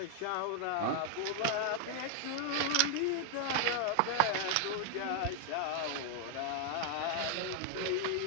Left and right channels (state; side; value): different; both; correlation 0.00